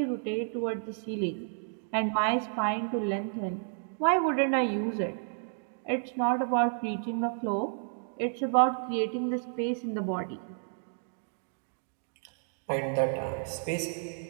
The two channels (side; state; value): left; silent; digital silence